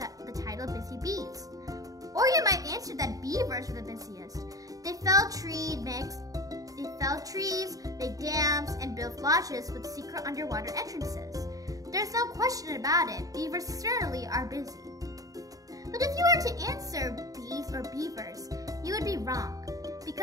title busy bees. Or you might answer that beavers are the busiest. They fell trees, make dams, and build lodges with secret underwater entrances. There's no question about it, beavers certainly are busy. But if you were to answer bees or beavers, you would be wrong,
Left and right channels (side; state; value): left; late; 0.17 ms